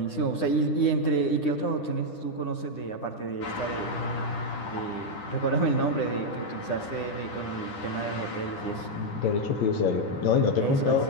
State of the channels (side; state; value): right; late; 9.9 ms